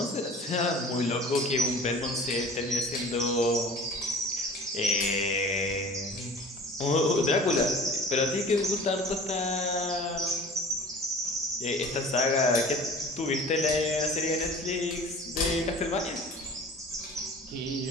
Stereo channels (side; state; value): both; normal; correlation 0.43